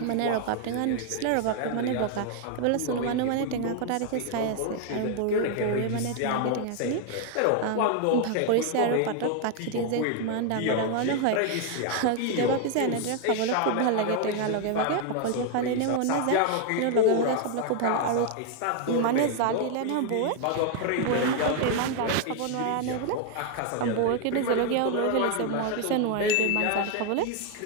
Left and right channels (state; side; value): different; both; correlation 0.01